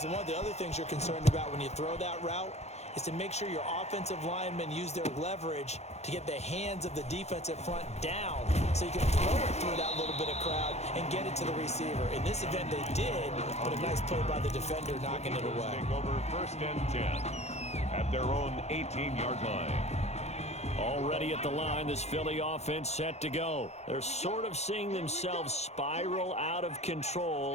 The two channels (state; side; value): late; right; 0.32 ms